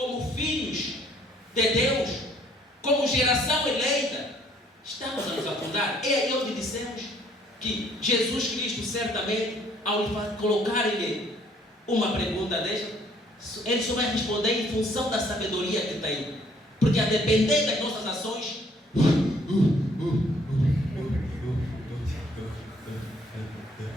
filhos de Deus, como geração eleita, estamos a nos afundar. É aí onde dissemos que Jesus Cristo, certamente, ao colocar-lhe uma pergunta desta, ele só vai responder em função da sabedoria que tem. Porque a depender das nossas ações,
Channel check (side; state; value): both; normal; correlation 0.63